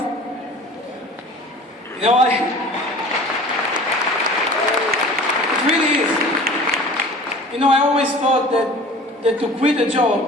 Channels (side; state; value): both; normal; correlation 0.43